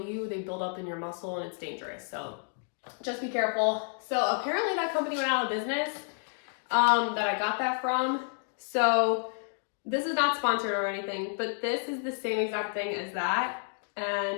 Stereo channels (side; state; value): right; silent; 57 dB below the other